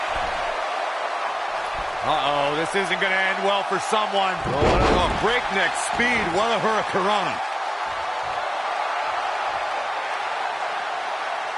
Uh-oh, this isn't going to end well for someone. Oh, breakneck speed. What a hurricanrana.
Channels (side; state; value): both; identical; correlation 1.00